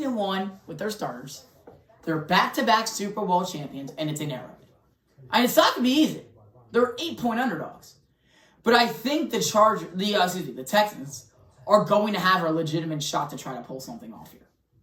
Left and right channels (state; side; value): identical; both; correlation 1.00